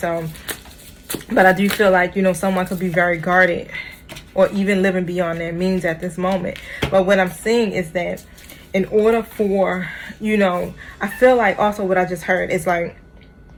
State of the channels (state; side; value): identical; both; correlation 1.00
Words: but I do feel like, you know, someone could be very guarded or even living beyond their means at this moment. But what I'm seeing is that in order for, you know, I feel like also what I just heard is like,